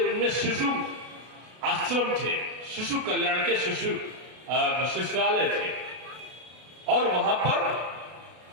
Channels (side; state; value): left; late; 33 ms